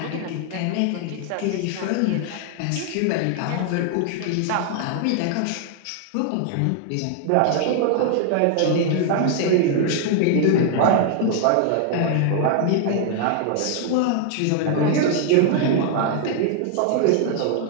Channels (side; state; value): both; different; correlation 0.00